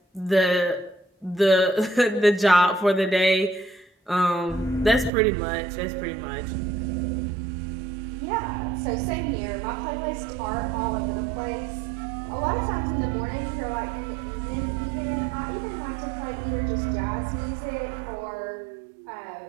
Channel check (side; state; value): left; drops out; at 5.1 s